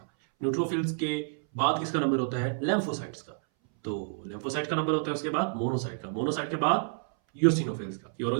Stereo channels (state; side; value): silent; left; 58 dB below the other